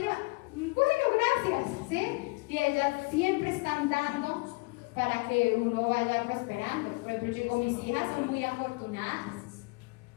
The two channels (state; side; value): quieter; right; 27.9 dB